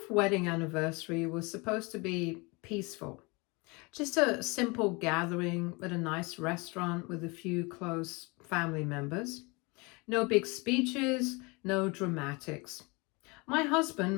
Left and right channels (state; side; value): quieter; right; 27.5 dB